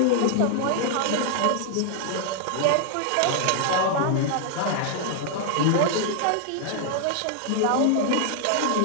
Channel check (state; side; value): different; both; correlation 0.00